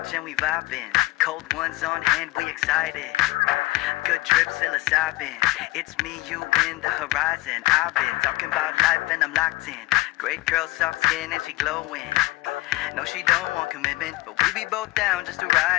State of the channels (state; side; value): quieter; right; 19.4 dB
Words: and we vibing. Cold ones on hand, we excited. Good trip, psilocybin. It's me, you, in the horizon. I've been talking about life and I'm locked in. Great girl, soft skin and she glowing. No, she don't want commitment, but we be both down just to